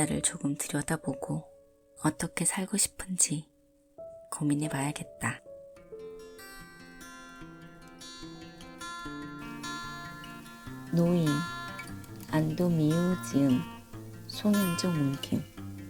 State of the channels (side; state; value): both; identical; correlation 1.00